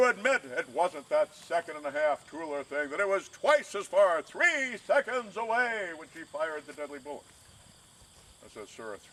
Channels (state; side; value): identical; both; correlation 1.00